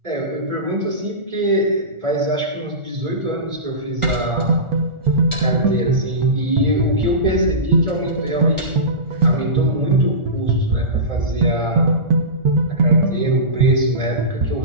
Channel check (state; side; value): late; left; 1.4 ms